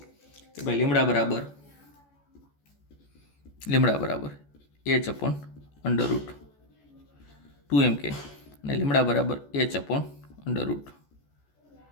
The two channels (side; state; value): right; late; 14 ms